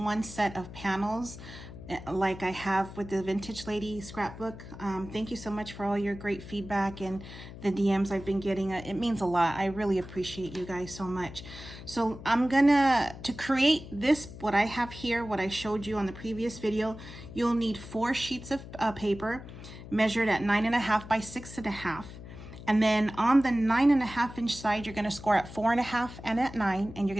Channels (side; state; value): left; noise; hum, 14 dB below the sound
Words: set of panels like I have with the Vintage Lady scrapbook. Thank you so much for all your great feedback and the DMs I've been getting. It means a lot. I really appreciate you guys so much. So I'm to create this, what I have here, what I showed you on the previous video, you'll need 4 sheets of paper measured at 9.5 by 6.5. And then on the 9.5 inch side, you're going to score at 4.5 and at 9, and you're